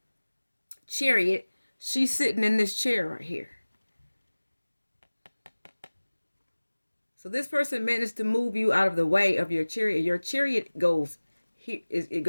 chariot. She's sitting in this chair right here. So this person managed to move you out of the way of your chariot. Your chariot goes here, it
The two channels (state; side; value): inverted; both; correlation -1.00